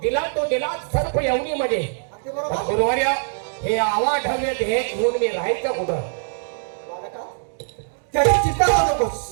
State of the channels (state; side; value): silent; left; digital silence